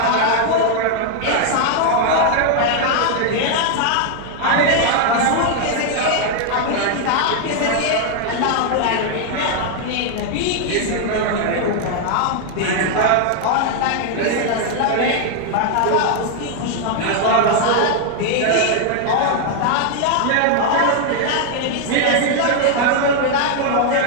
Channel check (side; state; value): both; different; correlation 0.00